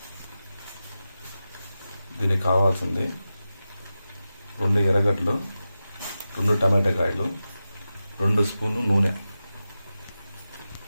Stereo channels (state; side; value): inverted; both; correlation -0.93